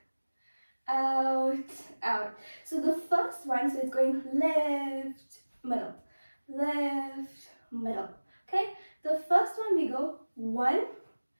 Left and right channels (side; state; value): both; inverted; correlation -1.00